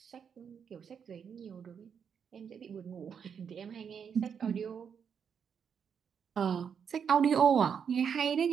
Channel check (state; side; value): quieter; left; 7.2 dB